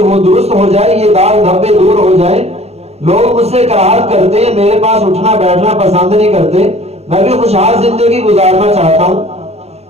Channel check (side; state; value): left; late; 0.30 ms